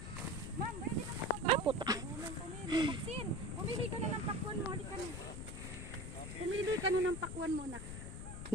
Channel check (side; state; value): left; noise; rumble, 7 dB below the sound